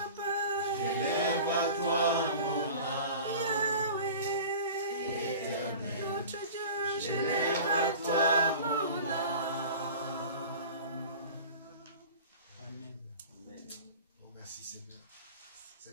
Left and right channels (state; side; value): inverted; both; correlation -0.38